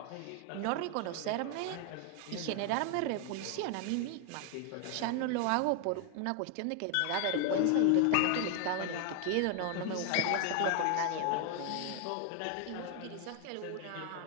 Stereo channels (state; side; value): different; both; correlation 0.00